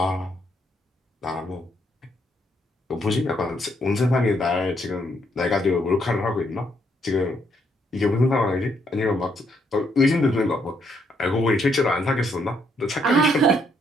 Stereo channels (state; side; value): normal; both; correlation 0.73